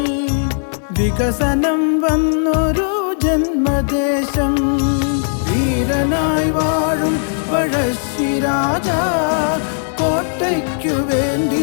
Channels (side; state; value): right; silent; digital silence